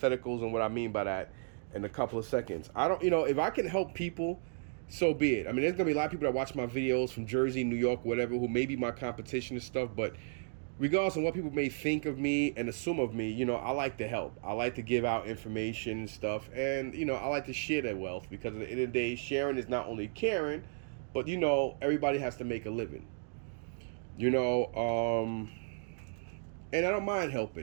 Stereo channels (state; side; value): silent; left; digital silence